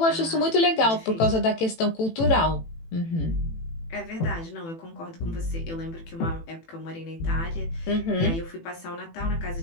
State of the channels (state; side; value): late; right; 18 ms